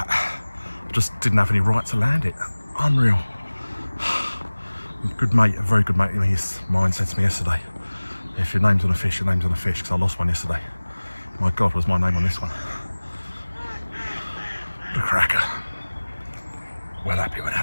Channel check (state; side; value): inverted; both; correlation -1.00